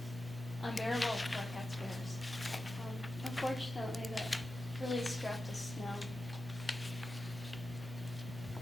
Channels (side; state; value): both; normal; correlation 0.92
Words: unbearable for our taxpayers. Unfortunately, that really strapped us down.